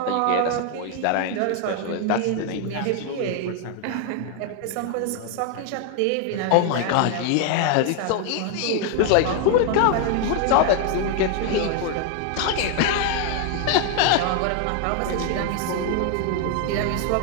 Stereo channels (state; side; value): different; both; correlation 0.00